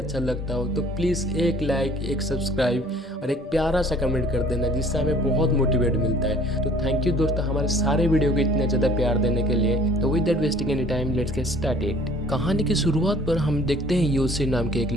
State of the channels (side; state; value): both; normal; correlation 0.53